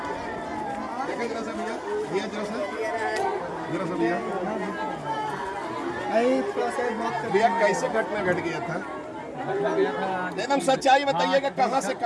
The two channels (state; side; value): identical; both; correlation 1.00